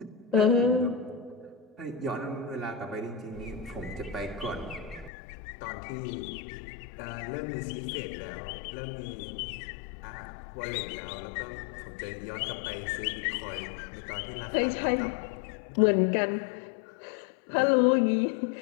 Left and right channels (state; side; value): drops out; right; at 5.1 s